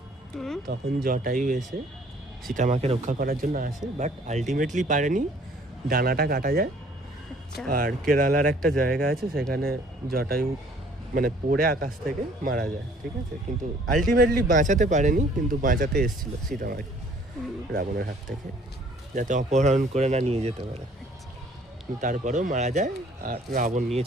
তখন জটায়ু এসে সীতা মাকে রক্ষা করার জন্য আসে, বাট আলটিমেটলি পারেনি, ডানাটা কাটা যায়। আর কেরালার একটা জায়গা আছে, সেখানে জটায়ু মানে পড়ে আকাশ থেকে মারা যায়, ঠিক আছে। কিন্তু আলটিমেটলি বাঁচাতে পারেনি, কিন্তু বাঁচাতে এসেছিল সীতা মাকে রাবণের হাত থেকে, যাতে অপহরণ করে না নিয়ে যেতে পারে। তারপরেও মারা যায়, আর রাবণ নিয়ে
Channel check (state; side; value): normal; both; correlation 0.57